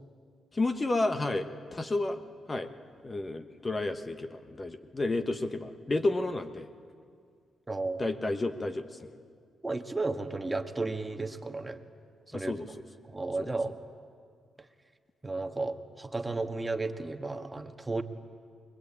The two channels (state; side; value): normal; both; correlation 0.92